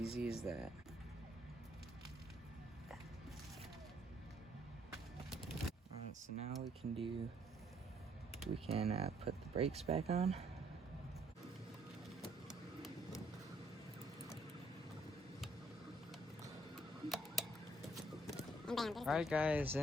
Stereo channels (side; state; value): both; normal; correlation 0.67